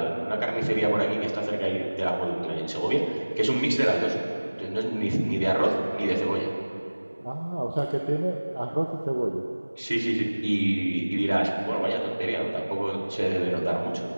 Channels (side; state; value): both; inverted; correlation -1.00